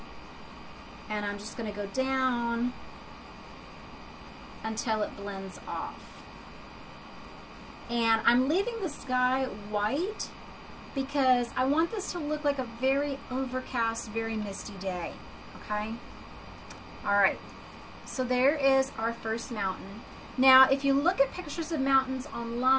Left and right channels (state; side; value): identical; both; correlation 1.00